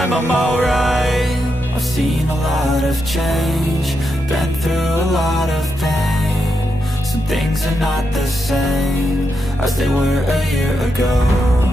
I'm alright. I've seen a lot of change, been through a lot of pain. Some things are not the same as they were a year ago,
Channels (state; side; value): normal; both; correlation 0.84